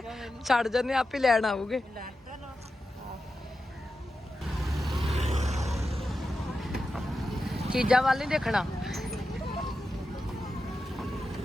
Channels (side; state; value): both; normal; correlation 0.90